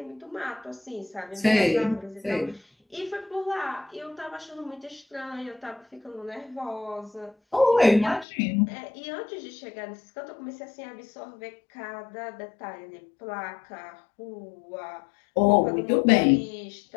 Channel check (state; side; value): drops out; right; at 8.2 s